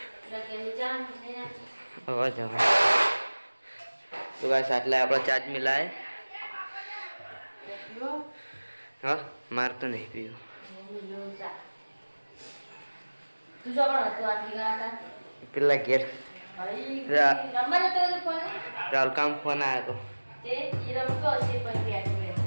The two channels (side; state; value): both; inverted; correlation -1.00